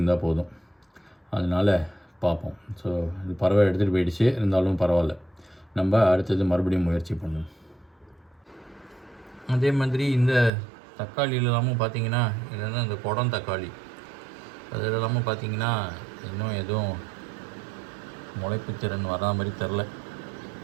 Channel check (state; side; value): drops out; left; at 10.5 s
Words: போதும். அதனால் பார்ப்போம். ஸோ இது பறவை எடுத்துகிட்டு போயிடுச்சு, இருந்தாலும் பரவாயில்ல. நம்ம அடுத்தது மறுபடியும் முயற்சி பண்ணுவோம். அதே மாதிரி இந்த தக்காளி இல்லாமல் பார்த்தீங்கன்னா இல்லைன்னா இந்த குடம் தக்காளி அது இல்லாமல் பார்த்தீங்கன்னா இன்னும் எதுவும் முளைப்பு திறன் வரா மாதிரி தெரில.